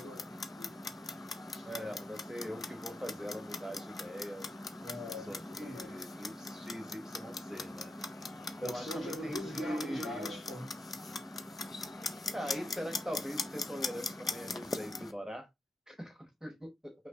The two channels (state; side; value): normal; both; correlation 0.84